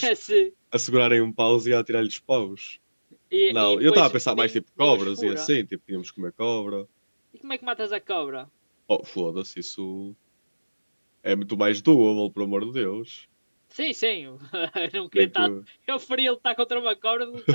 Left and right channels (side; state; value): both; inverted; correlation -1.00